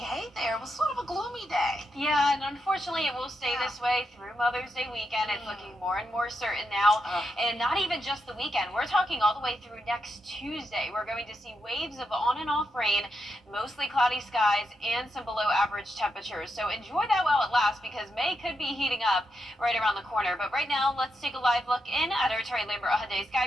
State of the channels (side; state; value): both; normal; correlation 0.84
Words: Hey there, it was sort of a gloomy day. Yeah, and unfortunately it will stay this way through Mother's Day weekend. It's looking more and more certain now. And not even just the weekend. We're talking all the way through next Tuesday. We're going to see waves of on and off rain, mostly cloudy skies, and some below average temperatures. So enjoy that while it lasts, because May could be heating up right around the corner. But right now, let's take a live look in at our Terry Lambert Hyundai